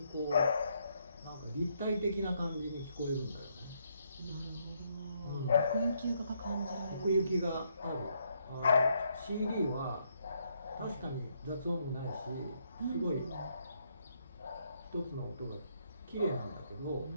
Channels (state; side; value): inverted; both; correlation -0.74